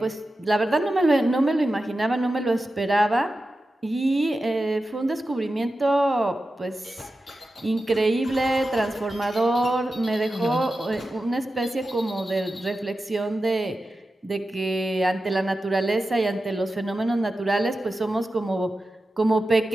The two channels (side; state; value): both; normal; correlation 0.92